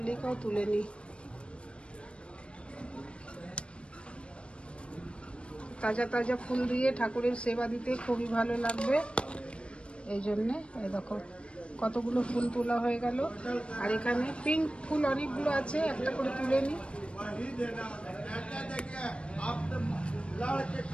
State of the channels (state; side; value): late; right; 0.058 ms